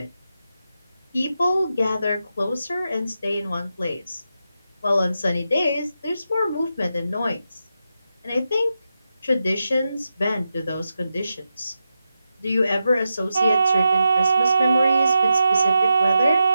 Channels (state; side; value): inverted; both; correlation -0.88